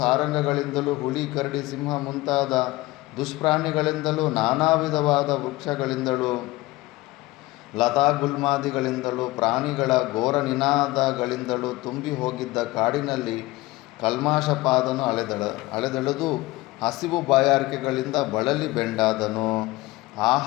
ಹುಲಿ, ಕರಡಿ, ಸಿಂಹ ಮುಂತಾದ ದುಷ್ಪ್ರಾಣಿಗಳಿಂದಲೂ, ನಾನಾ ವಿಧವಾದ ವೃಕ್ಷಗಳಿಂದಲೂ, ಲತಾಗುಲ್ಮಾದಿಗಳಿಂದಲೂ, ಪ್ರಾಣಿಗಳ ಘೋರ ನಿನಾದಗಳಿಂದಲೂ ತುಂಬಿ ಹೋಗಿದ್ದ ಕಾಡಿನಲ್ಲಿ ಕಲ್ಮಾಶಪಾದನು ಅಲೆದೆಳೆದು ಹಸಿವು ಬಾಯಾರಿಕೆಗಳಿಂದ ಬಳಲಿ ಬೆಂಡಾದನು.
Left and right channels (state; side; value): quieter; right; 19.8 dB